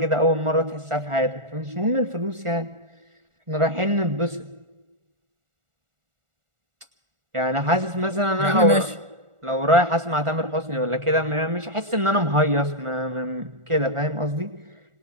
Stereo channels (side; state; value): left; late; 1.4 ms